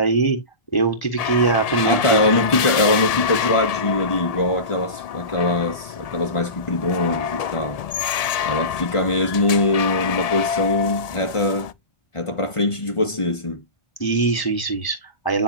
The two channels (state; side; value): late; right; 1.7 ms